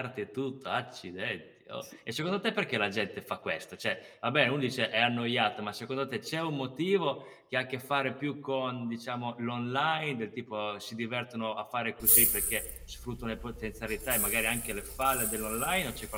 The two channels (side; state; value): both; identical; correlation 1.00